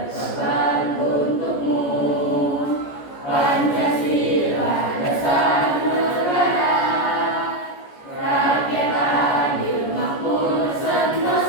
untukmu. Pancasila dasar negara, rakyat adil makmur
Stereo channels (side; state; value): right; late; 14 ms